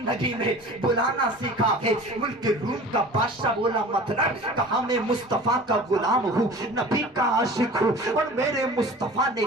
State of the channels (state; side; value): normal; both; correlation 0.40